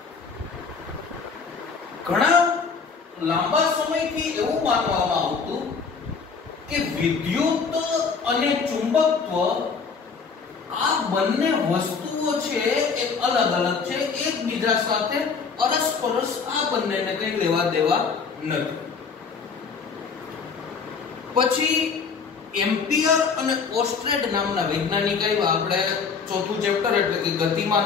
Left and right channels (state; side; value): quieter; right; 5.4 dB